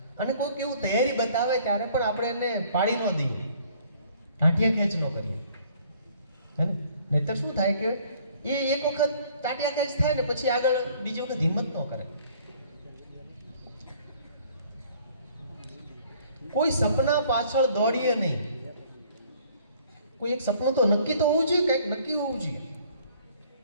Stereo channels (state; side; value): inverted; both; correlation -0.57